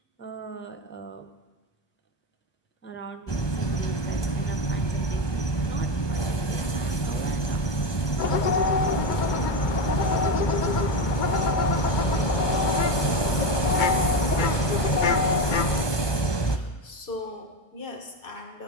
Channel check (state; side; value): late; right; 1.2 ms